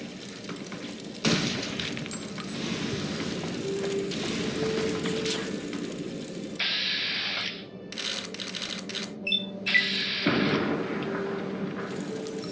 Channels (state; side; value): identical; both; correlation 1.00